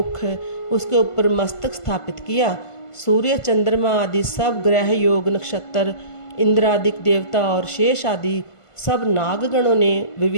उसके ऊपर मस्तक स्थापित किया। सूर्य, चंद्रमा आदि सब ग्रह, योग, नक्षत्र, इंद्रादिक देवता और शेष आदि सब नागगणों ने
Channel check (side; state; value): right; late; 1.5 ms